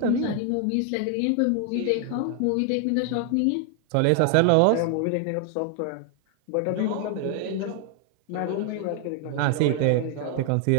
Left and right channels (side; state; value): both; different; correlation 0.00